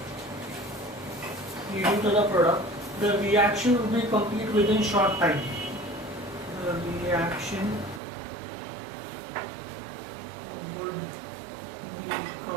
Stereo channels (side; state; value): left; drops out; at 8.0 s